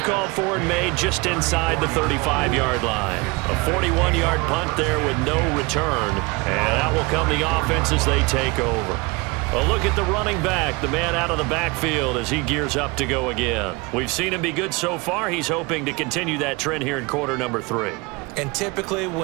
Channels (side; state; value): left; quieter; 25.8 dB